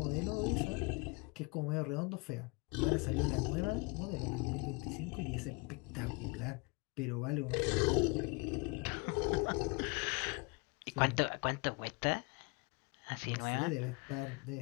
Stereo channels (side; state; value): right; quieter; 28.8 dB